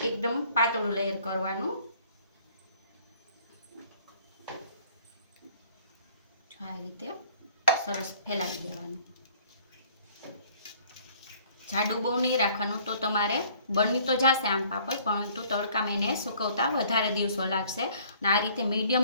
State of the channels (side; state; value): both; inverted; correlation -0.57